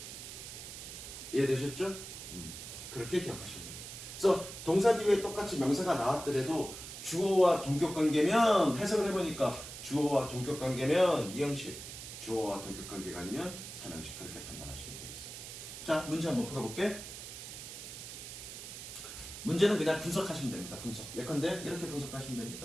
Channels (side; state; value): right; noise; hiss, 10 dB below the sound